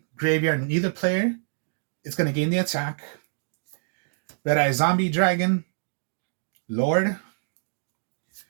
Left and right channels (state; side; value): silent; left; digital silence